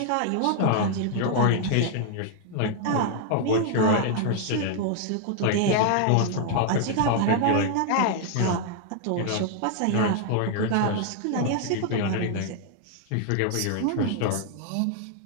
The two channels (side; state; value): both; different; correlation 0.00